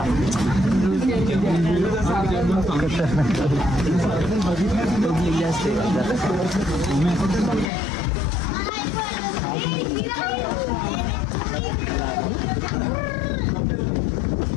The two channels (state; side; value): drops out; right; at 7.7 s